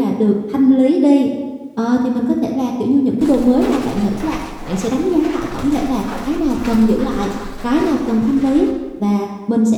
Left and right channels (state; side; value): identical; both; correlation 1.00